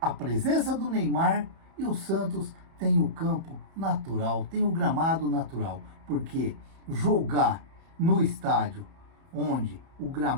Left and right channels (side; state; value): left; late; 31 ms